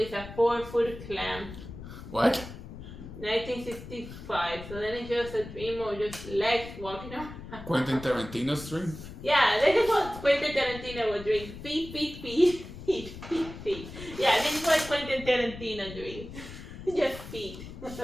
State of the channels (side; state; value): left; noise; rumble, 13 dB below the sound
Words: a 4-foot clam. What? 1965. So then it's just a dream of just legs walking around. Quentin Tarantino's dream? Yeah, this is what Quentin Tarantino would dream. Feet. Yeah, this is what Quentin Tarantino dreams. Just feet.